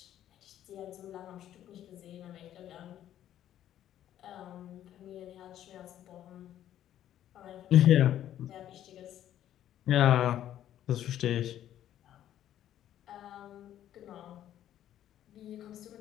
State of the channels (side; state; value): right; quieter; 11.6 dB